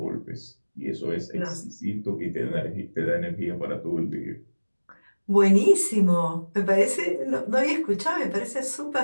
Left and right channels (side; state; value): both; inverted; correlation -1.00